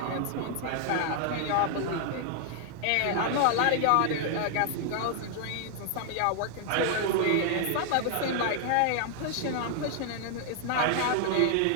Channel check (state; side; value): different; both; correlation 0.00